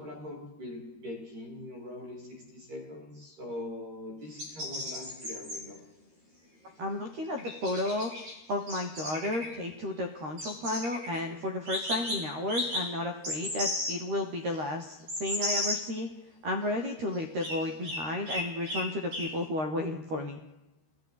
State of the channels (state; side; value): late; left; 13 ms